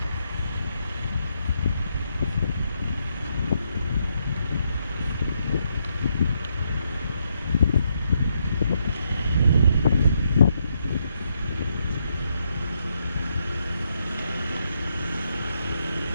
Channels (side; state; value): both; inverted; correlation -0.78